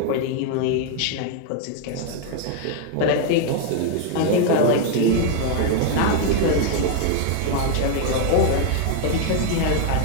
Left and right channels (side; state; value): both; different; correlation 0.00